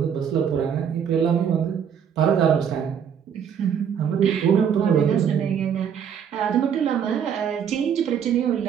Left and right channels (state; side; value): quieter; left; 8.0 dB